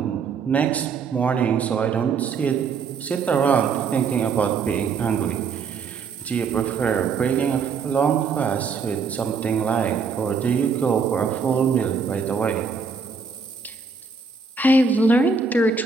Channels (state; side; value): quieter; left; 5.2 dB